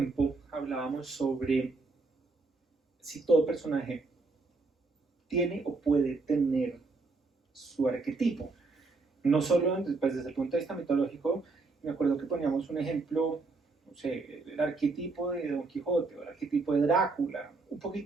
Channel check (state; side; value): quieter; left; 3.7 dB